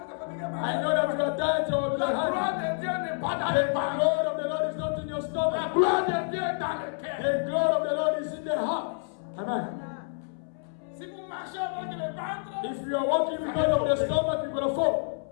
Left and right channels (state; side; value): silent; right; 59 dB below the other